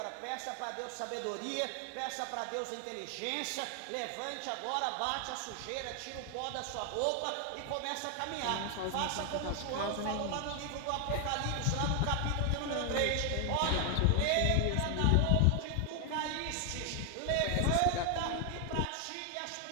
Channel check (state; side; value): different; both; correlation 0.00